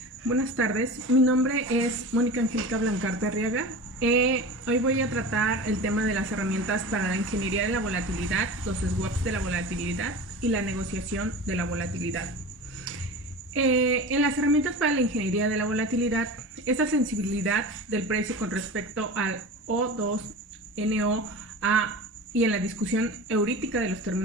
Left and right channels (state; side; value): normal; both; correlation 0.32